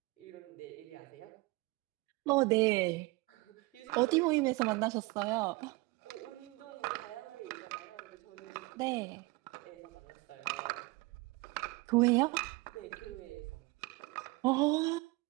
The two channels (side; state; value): left; quieter; 23.3 dB